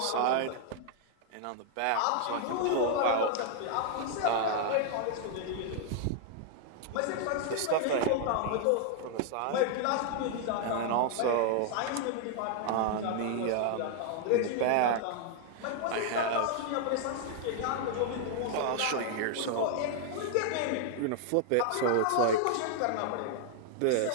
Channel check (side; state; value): both; different; correlation 0.00